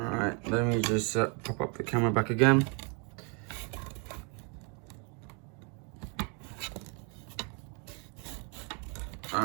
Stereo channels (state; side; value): quieter; left; 36.0 dB